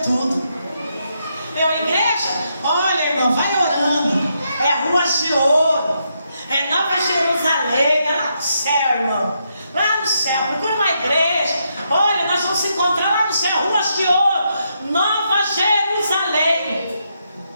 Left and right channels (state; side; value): inverted; both; correlation -0.79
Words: tudo. Meu, igreja, olha, irmão, vai orando. É Ruas de Ouro, é Nova Jerusalém, é lá no céu, irmão. Lá no céu, procura uma igreja. Olha, nós vamos se encontrar lá no céu, Ruas de Ouro, Nova Jerusalém.